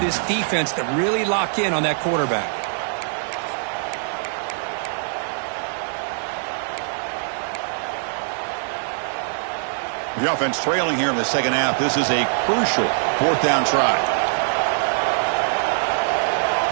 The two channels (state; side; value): silent; left; 64 dB below the other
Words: this defense to really lock in on that quarterback. The offense trailing here in the second half. This is a crucial fourth down try.